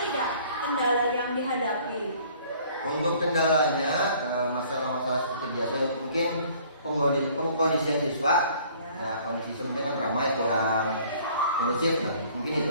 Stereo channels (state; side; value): inverted; both; correlation -0.55